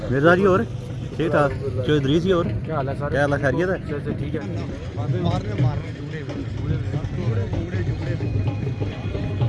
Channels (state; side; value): identical; both; correlation 1.00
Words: मिर्जा जी और ठीक ठाक? चौधरी जी और क्या हाल है सर? क्या हाल है, खैरियत है? ठीक है।